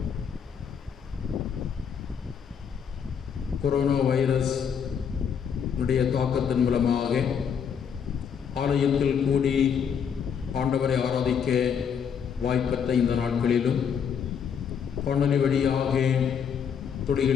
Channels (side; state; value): right; quieter; 7.4 dB